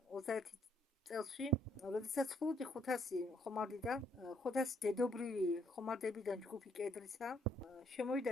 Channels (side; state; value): both; normal; correlation 0.68